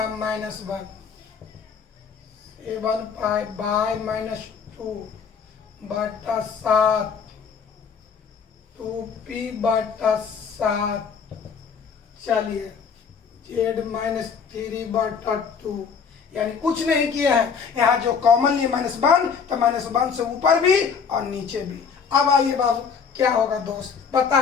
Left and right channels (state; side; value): quieter; right; 6.2 dB